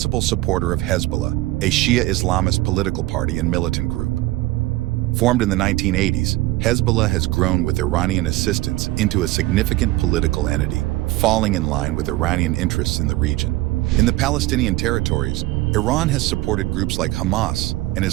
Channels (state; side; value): quieter; left; 18.3 dB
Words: supporter of Hezbollah, a Shia Islamist political party and militant group. Formed in the 1980s, Hezbollah has grown with Iranian assistance into a significant political entity, falling in line with Iranian interests in the region. In the Palestinian territories, Iran has supported groups like Hamas and